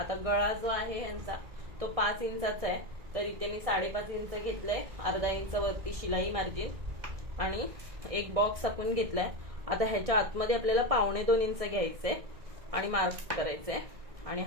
गळा जो आहे यांचा तो 5 इंचाचा आहे, तर इथे मी 5.5 इंच घेतलंय, 1/2 इंच वरती शिलाई मार्जिन आणि एक बॉक्स आखून घेतलाय. आता ह्याच्या आतमध्ये आपल्याला 2.25 इंच घ्यायचंय आणि मार्क करायचंय आणि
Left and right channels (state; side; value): late; left; 1.6 ms